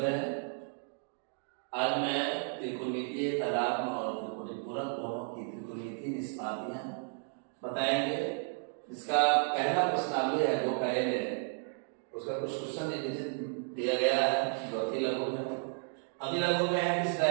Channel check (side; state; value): left; silent; 56 dB below the other